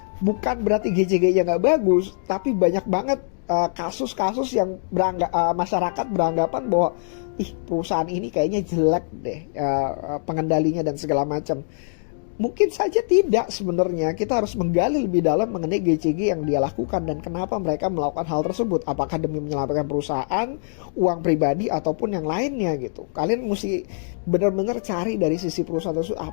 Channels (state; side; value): silent; right; digital silence